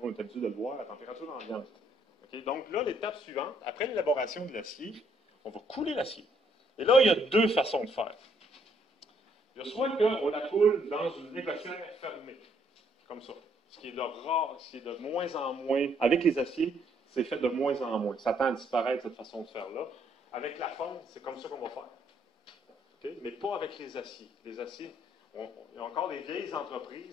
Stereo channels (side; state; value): both; normal; correlation 0.69